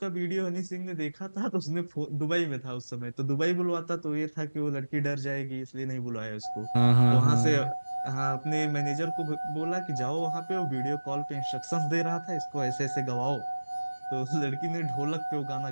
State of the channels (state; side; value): inverted; both; correlation -1.00